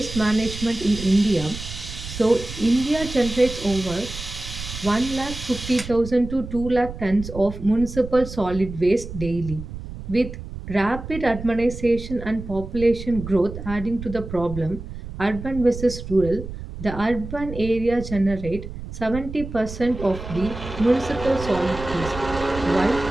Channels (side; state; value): right; noise; rumble, 10 dB below the sound